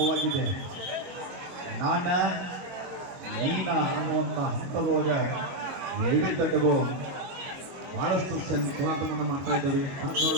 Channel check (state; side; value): late; left; 22 ms